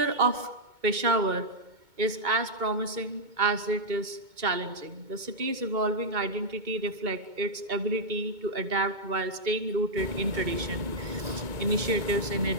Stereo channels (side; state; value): left; late; 2.2 ms